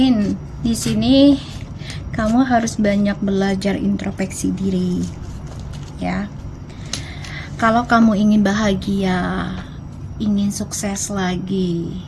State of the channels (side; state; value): both; identical; correlation 1.00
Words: di sini kamu harus banyak belajar introspeksi diri ya. Kalau kamu ingin bahagia, ingin sukses lagi,